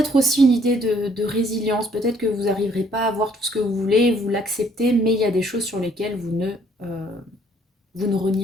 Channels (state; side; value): normal; both; correlation 0.63